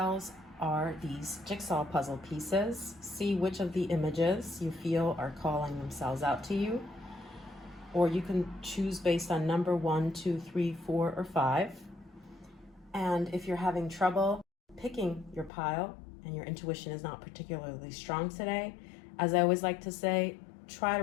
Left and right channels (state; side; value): drops out; right; at 15.5 s